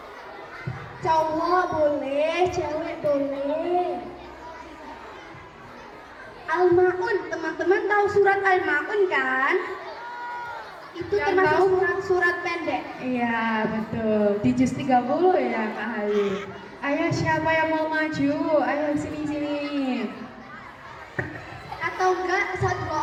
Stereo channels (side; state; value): both; identical; correlation 1.00